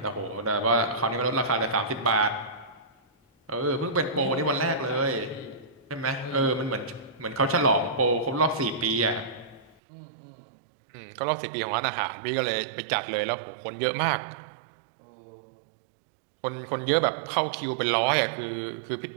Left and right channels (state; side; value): drops out; left; at 9.8 s